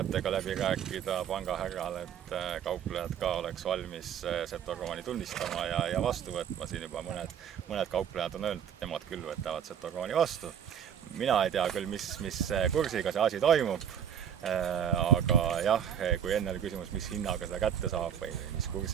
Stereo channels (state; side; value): quieter; left; 8.8 dB